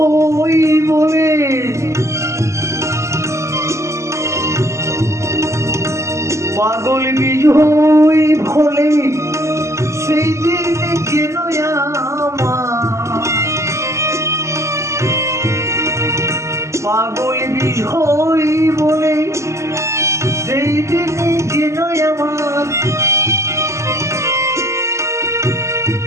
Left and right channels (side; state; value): left; late; 0.14 ms